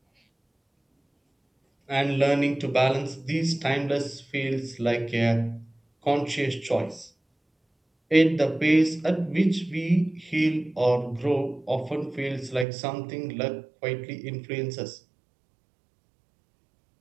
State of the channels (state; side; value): drops out; left; at 12.7 s